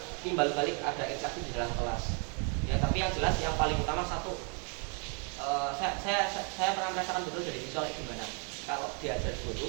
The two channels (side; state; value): left; quieter; 37.9 dB